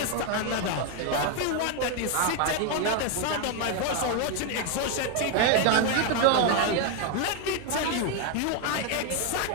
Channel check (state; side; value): different; both; correlation 0.01